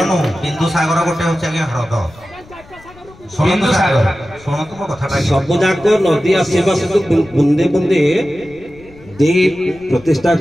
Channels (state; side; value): noise; left; rumble, 24 dB below the sound